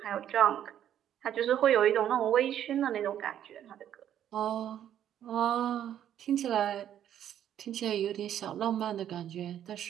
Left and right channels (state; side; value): quieter; left; 10.5 dB